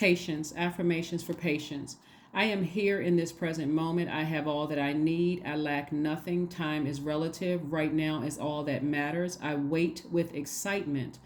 affirmations for patience. I am here in this present moment. I have all that I need. I lack nothing. Time is relative. Right now is all that matters. I wait with excitement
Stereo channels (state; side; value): identical; both; correlation 1.00